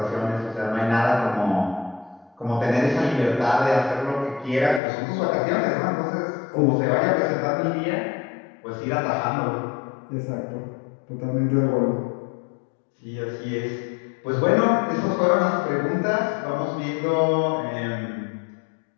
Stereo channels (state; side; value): drops out; right; at 4.8 s